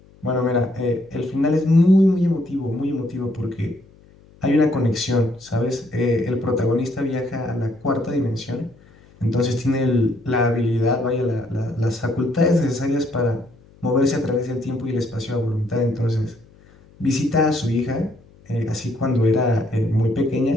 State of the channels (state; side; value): noise; left; hum, 27 dB below the sound